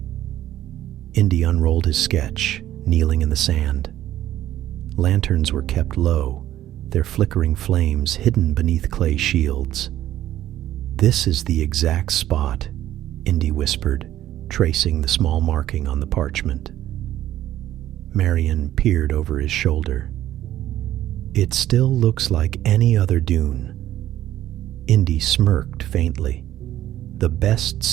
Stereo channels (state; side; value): quieter; left; 13.0 dB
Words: Indy unrolled his sketch, kneeling in the sand. Lanterns were kept low, their flickering flames hidden beneath clay shields. "This is the exact spot," Indy whispered, tracing the small marking on the parchment. Marion peered over his shoulder. "It still looks like any other dune." Indy smirked faintly. "The best